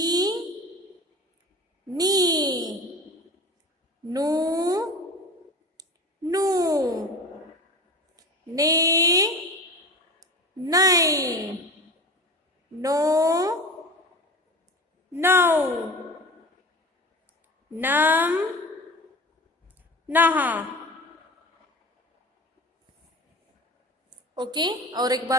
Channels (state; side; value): normal; both; correlation 0.33